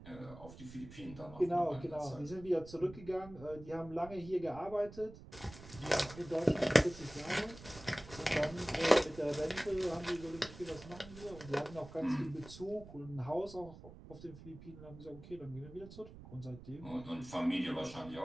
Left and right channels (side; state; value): right; noise; rumble, 16 dB below the sound